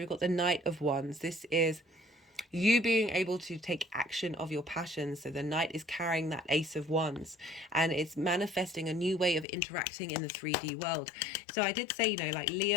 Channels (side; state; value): right; drops out; at 9.5 s